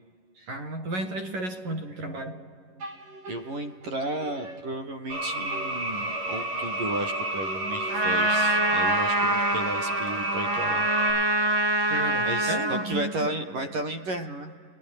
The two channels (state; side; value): late; left; 11 ms